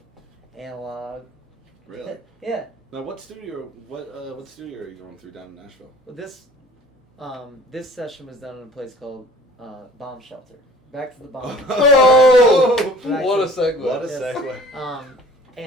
analog. Really? Yeah. Now, what studio are you going through down in Nashville? Well, this session was done in a place called Bomb Shelter. back to the bomb. Oh, Back what a to- segue. What a Yes. segue.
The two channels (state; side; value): normal; both; correlation 0.50